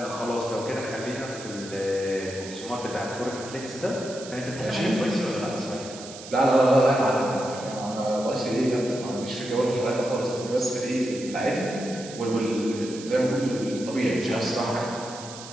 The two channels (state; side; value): noise; right; hiss, 14 dB below the sound